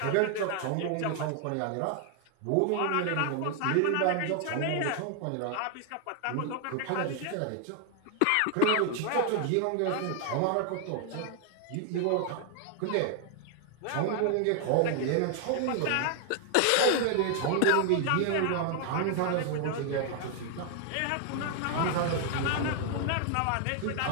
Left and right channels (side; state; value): both; different; correlation 0.00